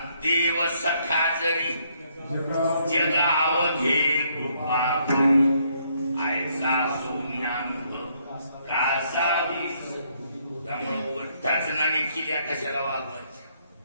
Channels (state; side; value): inverted; both; correlation -0.70